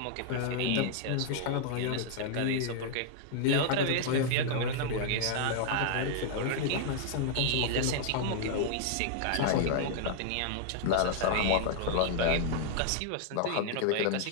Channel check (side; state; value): both; different; correlation -0.01